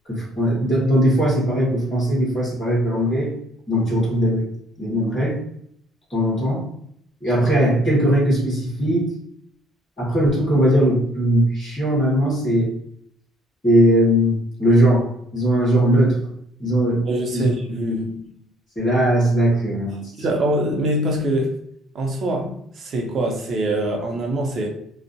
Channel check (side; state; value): both; normal; correlation 0.62